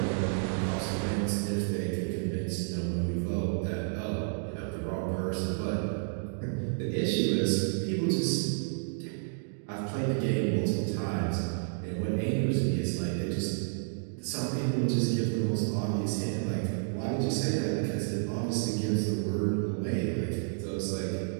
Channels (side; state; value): left; silent; digital silence